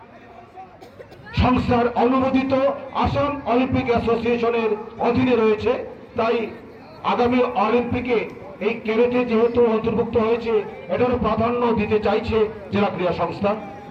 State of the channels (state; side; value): identical; both; correlation 1.00